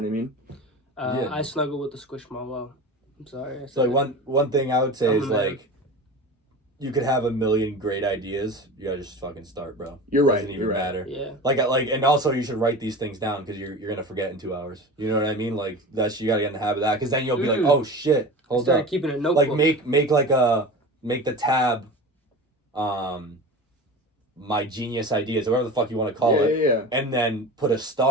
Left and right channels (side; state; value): both; normal; correlation 0.32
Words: I snuggle with the Squishmallow. I'm sorry. So like one thing I would say is like, you could have a million great ideas. You gotta just fucking start, bro. You're right. Doesn't even matter. Yeah. Like, and also you should write these things down because you're gonna forget in 2 hours. You know what I mean? Like you gotta get in the habit of that because then you'll be like, oh shit, hold up. Keeping a notebook. Like make the tab, my genius ideas or whatever the fuck you want to call it. Yeah. And then put a